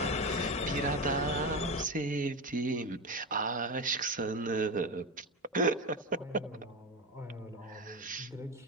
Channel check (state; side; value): normal; both; correlation 0.18